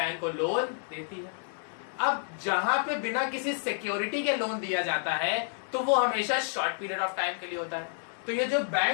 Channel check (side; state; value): right; silent; digital silence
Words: को लोन देती है। अब जहां पे बिना किसी सिक्योरिटी के लोन दिया जाता है तो वो हमेशा शॉर्ट पीरियड ऑफ टाइम के लिए होता है। तो ये जो